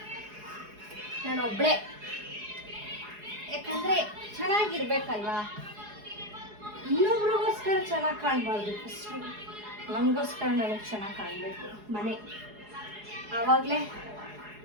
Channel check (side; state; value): left; late; 4.8 ms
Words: ನಾನು ಒಬ್ಬಳೇ, ಯಾಕಂದರೆ ಚೆನ್ನಾಗಿರ್ಬೇಕಲ್ವಾ. ಇನ್ನೊಬ್ರಿಗೋಸ್ಕರ ಚೆನ್ನಾಗಿ ಕಾಣಬಾರ್ದು. ಫಸ್ಟು ನಮಗೋಸ್ಕರ ನನಗೆ ಚೆನ್ನಾಗಿ ಕಾಣಬೇಕು ಮನೆ. ಆವಾಗಲೇ